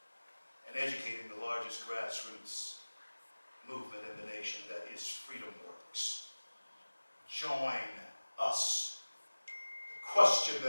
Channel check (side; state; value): both; inverted; correlation -1.00